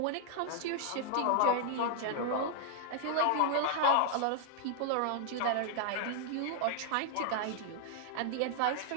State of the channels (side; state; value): both; different; correlation -0.01